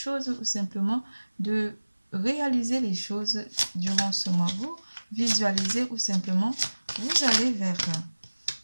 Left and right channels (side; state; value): both; inverted; correlation -1.00